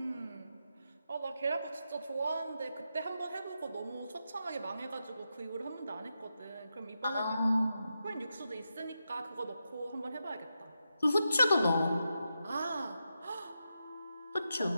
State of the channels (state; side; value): inverted; both; correlation -0.87